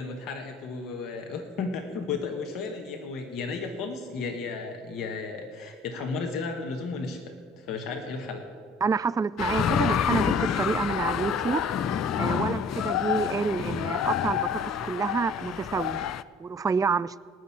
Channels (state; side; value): normal; both; correlation 0.51